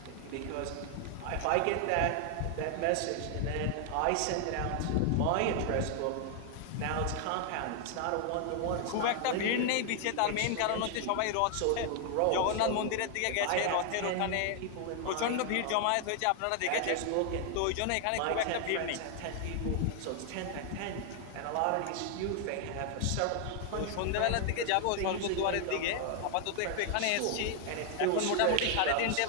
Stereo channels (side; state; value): both; different; correlation 0.00